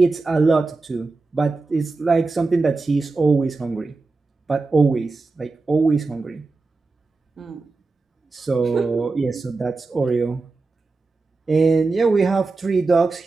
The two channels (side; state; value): left; quieter; 3.8 dB